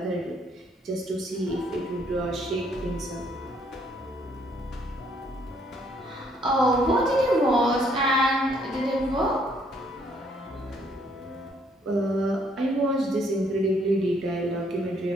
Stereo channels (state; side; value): normal; both; correlation 0.67